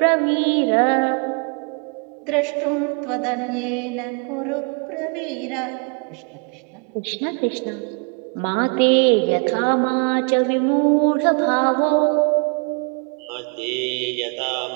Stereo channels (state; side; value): quieter; left; 38.7 dB